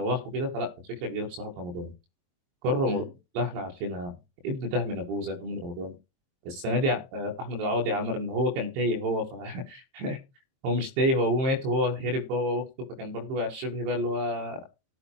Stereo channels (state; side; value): late; left; 23 ms